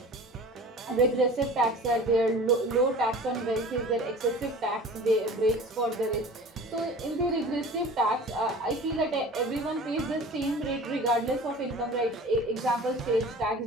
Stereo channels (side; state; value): both; normal; correlation 0.40